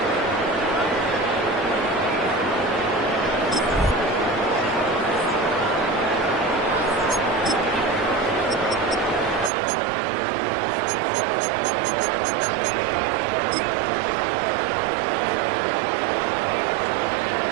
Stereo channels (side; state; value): left; drops out; at 9.5 s